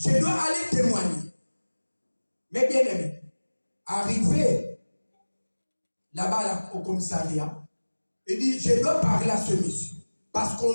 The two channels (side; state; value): both; inverted; correlation -1.00